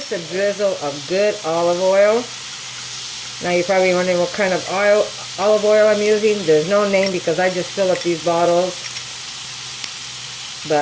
a drizzle of good olive oil. Now you're probably wondering what kind of olive oil I'm using. There's no name because I just fill up these bottles.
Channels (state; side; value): identical; both; correlation 1.00